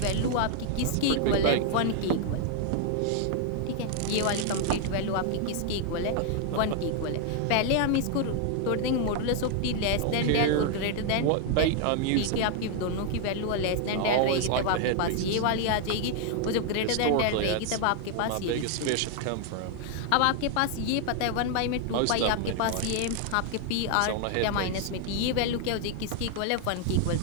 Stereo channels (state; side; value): different; both; correlation 0.00